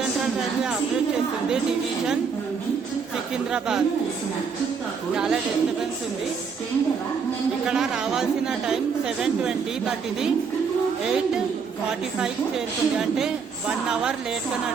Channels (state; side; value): quieter; left; 5.8 dB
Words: railway operate చేస్తుంది డివిజన్ సికింద్రాబాద్. చాలా డిస్టర్బెన్స్ ఉంది. ఇక్కడ రావాల్సిన టైం 7:20, బట్ ఇది 8:45 చేరుకుంది. అంటే 1 hour లేట్గా